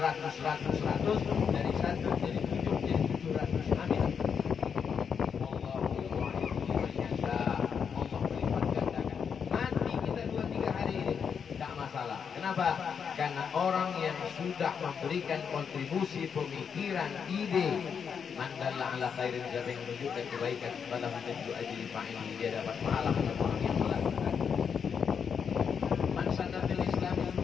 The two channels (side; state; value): right; quieter; 6.8 dB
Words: dari 1 jadi 7 jadi 700. Amin. Allah melipat gandakan. Nanti kita 2-3 hari ini tak masalah. Kenapa? Karena orang yang sudah memberikan kontribusi pemikiran, ide, mandalla ala khairin, siapa yang menunjukkan kebaikan kepada menjadi ajli fa'ili, dia dapat pahala untuk orang yang melakukan.